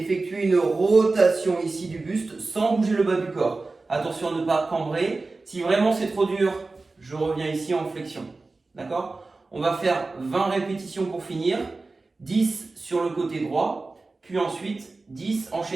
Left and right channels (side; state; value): left; quieter; 3.6 dB